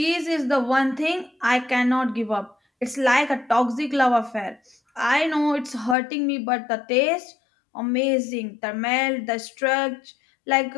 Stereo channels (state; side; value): drops out; right; at 6.0 s